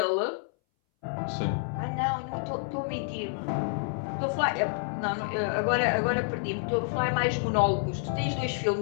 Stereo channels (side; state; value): right; silent; 59 dB below the other